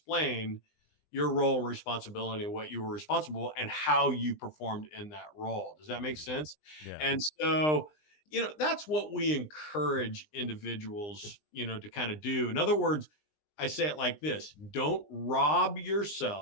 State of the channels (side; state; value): right; late; 20 ms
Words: your role and responsibility and what you were responsible and how you performed in that role. Does that make sense? Yeah. And so, that's what we encourage individuals, to kind of do. In other words, I say it like this: don't rob